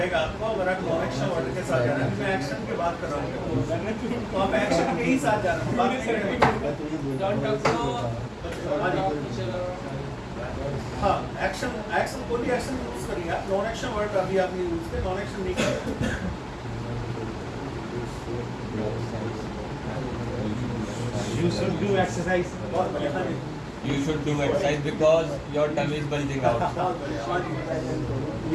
आपको, अगर आप नॉन एक्शन वर्ड के साथ जा रहे हैं। मैं एक्शन की बात कर रहा हूँ, तो आप एक्शन के ही साथ जा रहे हैं, बात नहीं करेंगे। Don't talk to हाँ जी, teacher. हाँ, एक्शन एक्शन कोई भी एक्शन यूज करिए आप। नॉन एक्शन वर्ड अभी आपने यूज किया, नॉन एक्शन नहीं करें। You should do exercise. बहुत बढ़िया। हाँ जी, You should do exercise because your tummy is bulging out. बहुत बढ़िया। हाँ जी,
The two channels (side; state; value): both; identical; correlation 1.00